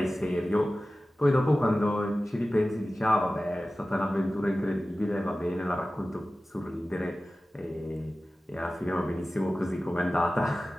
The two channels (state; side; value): normal; both; correlation 0.96